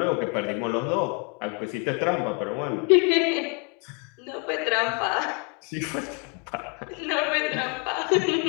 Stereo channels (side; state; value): right; quieter; 34.3 dB